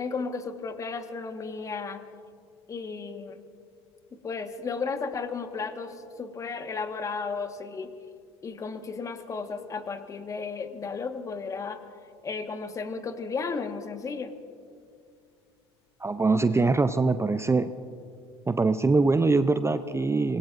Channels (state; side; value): normal; both; correlation 0.79